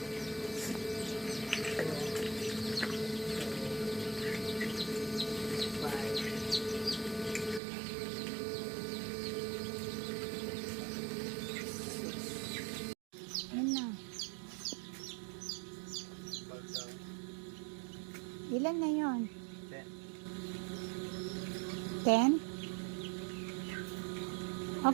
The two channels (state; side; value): drops out; left; at 7.6 s